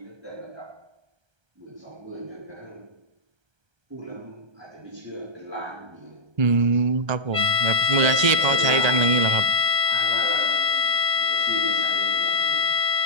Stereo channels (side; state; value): left; late; 1.3 ms